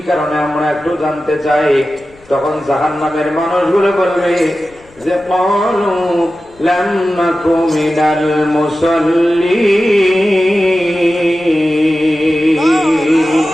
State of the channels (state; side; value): noise; left; rumble, 28 dB below the sound